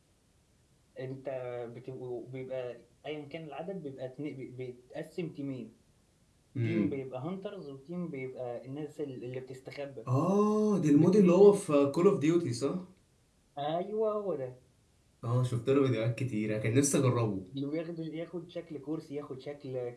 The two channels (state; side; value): identical; both; correlation 1.00